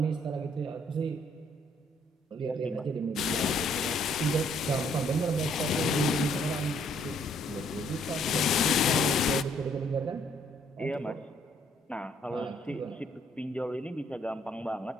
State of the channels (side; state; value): both; normal; correlation 0.66